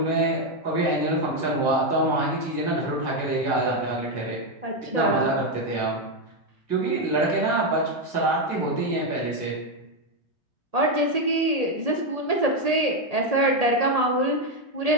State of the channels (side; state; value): left; late; 1.8 ms